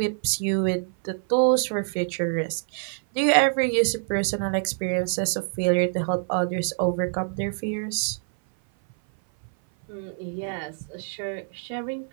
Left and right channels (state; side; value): silent; left; 56 dB below the other